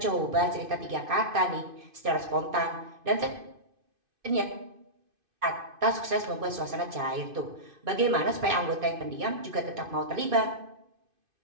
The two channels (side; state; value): left; late; 2.5 ms